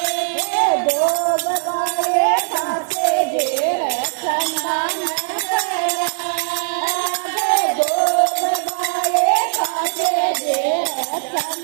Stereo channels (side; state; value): left; silent; digital silence